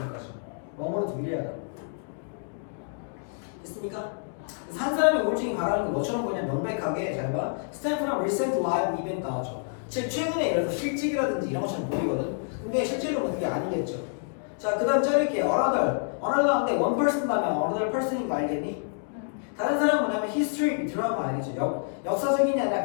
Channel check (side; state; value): right; silent; digital silence